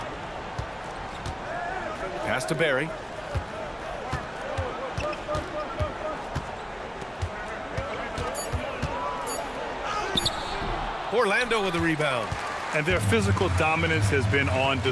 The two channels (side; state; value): both; identical; correlation 1.00